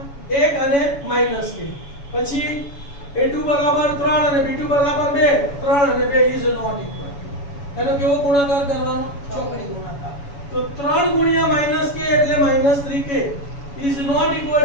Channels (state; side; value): late; right; 7.1 ms